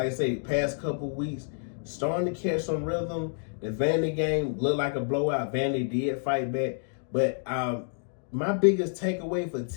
I say, past couple weeks, starting to catch some rhythm. The Vandy game looked like a blowout. Vandy did fight back, but my biggest takeaway for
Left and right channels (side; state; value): right; silent; digital silence